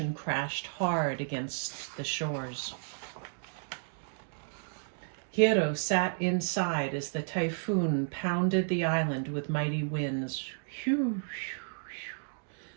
crashed hard against the shores. Hiro sat inside as the typhoon pounded the island with mighty winds.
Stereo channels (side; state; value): left; silent; digital silence